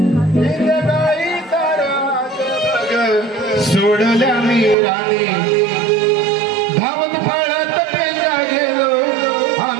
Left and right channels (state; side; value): drops out; left; at 4.8 s